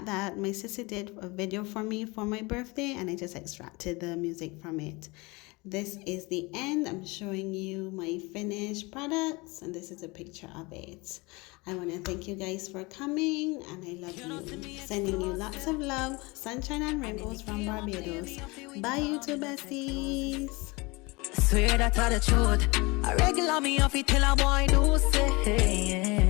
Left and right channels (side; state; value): right; quieter; 25.1 dB